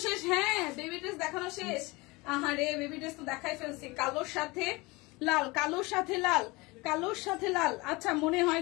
শেষ? হ্যাঁ বেবি ড্রেস দেখানো শেষ। আহারে বেবি ড্রেস তো দেখাই ফেলছি। কালোর সাথে লাল, কালোর সাথে লাল, কালোর সাথে লাল। আচ্ছা মনে হয়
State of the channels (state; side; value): quieter; right; 24.0 dB